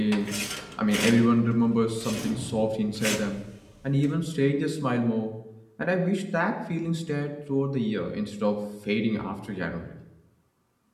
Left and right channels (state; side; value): identical; both; correlation 1.00